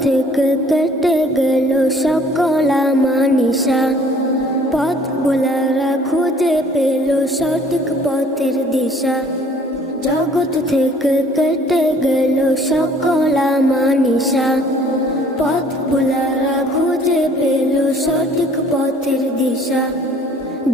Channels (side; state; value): both; normal; correlation 0.55